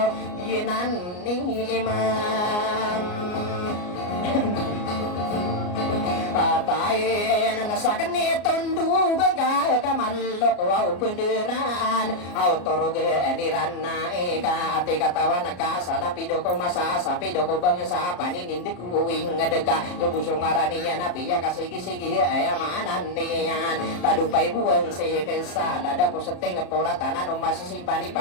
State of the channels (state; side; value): late; right; 34 ms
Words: iyan ni imam Patain na sa kanitong dugang kamalok wow penderan autoroge niran na eka ati katawan nakasalapido ko masasapido ko bang sa paninindik uwing ngadega lubusong araniya na piya kasigi-sigi ay maanan niyan tadupay buwan si kesala dapo sa tinga poratanan o masasimpani